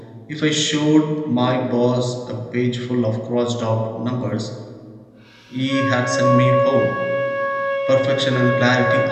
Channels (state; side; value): identical; both; correlation 1.00